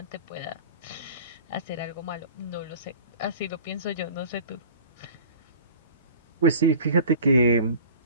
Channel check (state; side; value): inverted; both; correlation -0.42